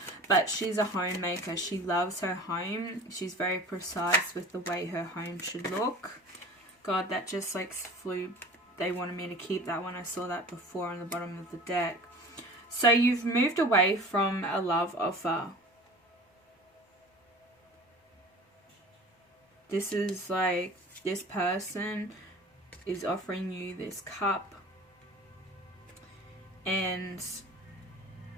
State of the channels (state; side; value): normal; both; correlation 0.41